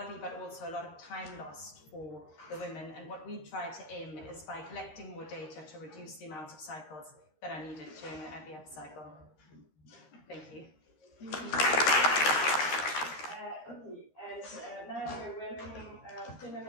but also a lot of time lost for the women. And what we try to aim is by collecting more data to reduce the amount of cycles that are needed during an IVF cycle. Thank you. Okay, and now we're welcoming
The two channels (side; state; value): right; late; 13 ms